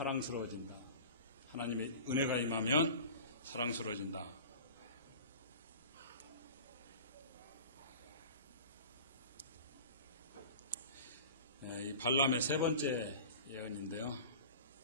하나님의 은혜가 임하면 사랑스러워진다. 이 발람의 세 번째 예언인데요.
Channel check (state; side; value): inverted; both; correlation -0.38